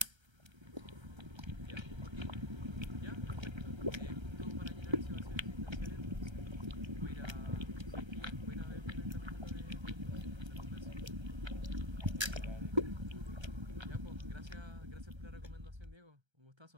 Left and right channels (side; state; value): left; late; 1.3 ms